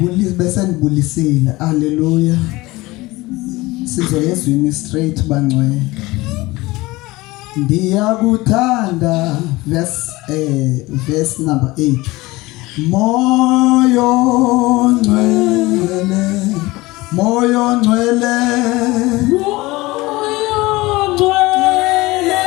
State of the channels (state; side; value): quieter; right; 20.8 dB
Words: bese nibulisile. Haleluya. Sizoyezwini straight bangcwele. Ndiyakuthanda verse number 8. Moyo ngcwele, moyo ngcwele, moyo ngcwele,